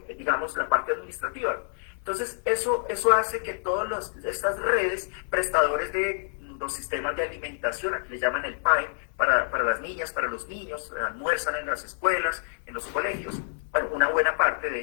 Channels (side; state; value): right; silent; 58 dB below the other